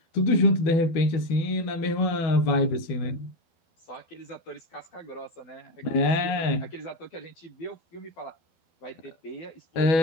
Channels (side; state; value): right; late; 12 ms